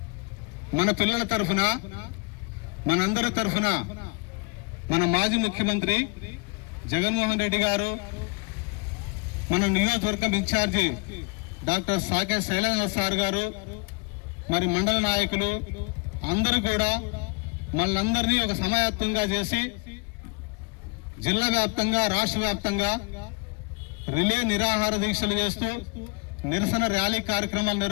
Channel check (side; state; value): right; quieter; 30.2 dB